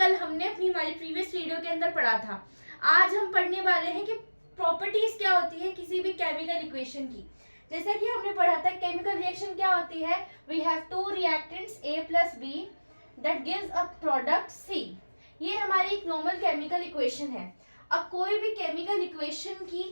हमने हमारी प्रीवियस वीडियो के अंदर पढ़ा था। आज हम पढ़ने वाले हैं कि प्रॉपर्टीज क्या होती है किसी भी केमिकल इक्वेशन की। जैसे कि हमने पढ़ा था केमिकल रिएक्शन क्या होती है, we have two reactants A plus B that gives a product C। ये हमारी एक नॉर्मल केमिकल इक्वेशन है। अब कोई भी केमिकल इक्वेशन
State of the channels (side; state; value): both; inverted; correlation -1.00